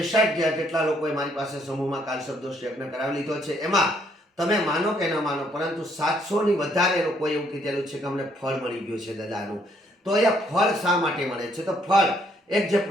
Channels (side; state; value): both; normal; correlation 0.69